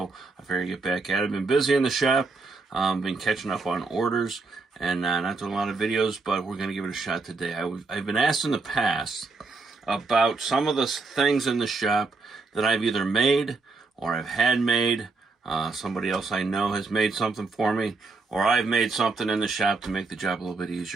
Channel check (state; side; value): quieter; left; 3.9 dB